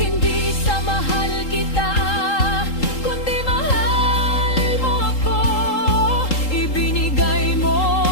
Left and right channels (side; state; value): right; late; 3.8 ms